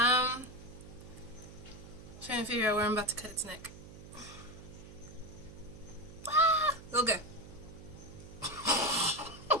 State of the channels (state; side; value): noise; right; hum, 16 dB below the sound